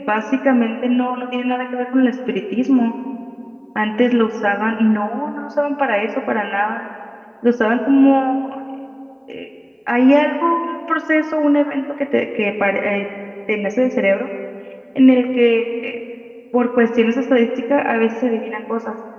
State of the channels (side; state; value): both; identical; correlation 1.00